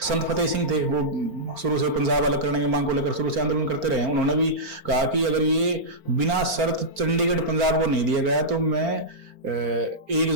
संत फतेह सिंह थे, वो शुरू से पंजाब अलग करने की मांग को लेकर शुरू से आंदोलन करते रहे। उन्होंने भी कहा कि अगर ये बिना शर्त चंडीगढ़ पंजाब को नहीं दिया गया तो मैं 1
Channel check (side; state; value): left; late; 4.4 ms